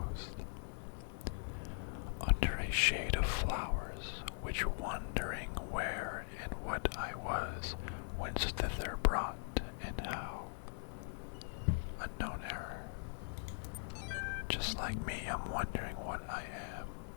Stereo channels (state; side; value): silent; right; digital silence